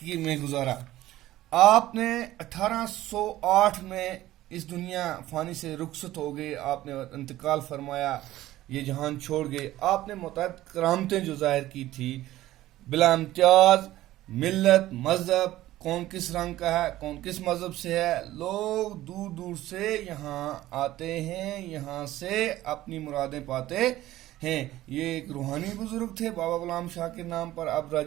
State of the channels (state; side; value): quieter; left; 15.3 dB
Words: میں گزارا. آپ نے 1808 میں اس دنیا فانی سے رخصت ہو گئے, آپ نے انتقال فرمایا, یہ جہان چھوڑ گئے. آپ نے متعدد کرامتیں جو ظاہر کی تھی بلا امتیاز ملت مذہب, کون کس رنگ کا ہے, کون کس مذہب سے ہے, لوگ دور دور سے یہاں آتے ہیں, یہاں سے اپنی مرادیں پاتے ہیں. یہ ایک روحانی بزرگ تھے بابا غلام شاہ کے نام پر. اب